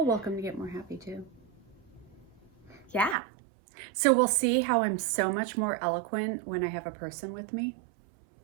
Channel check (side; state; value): left; drops out; at 3.2 s